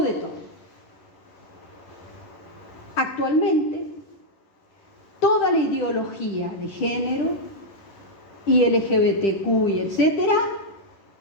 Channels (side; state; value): right; late; 10 ms